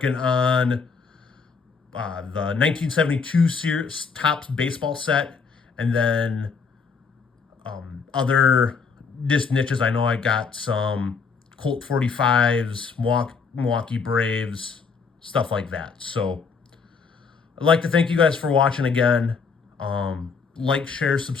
on the 1972 series Topps baseball set, and then other just niches. I know I got some Colt 45s, Milwaukee Braves, stuff like that. So I'd like to thank you guys for watching again. Like, share,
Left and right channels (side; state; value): right; quieter; 5.3 dB